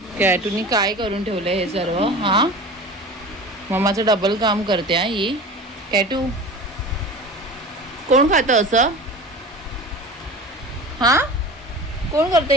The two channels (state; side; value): normal; both; correlation 0.35